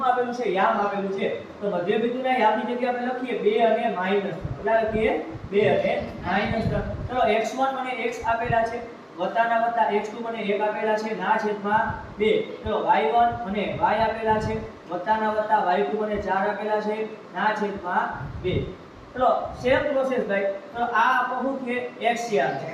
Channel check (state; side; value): identical; both; correlation 1.00